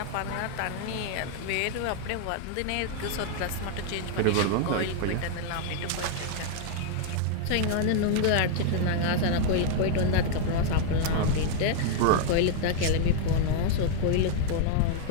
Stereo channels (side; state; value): both; different; correlation 0.00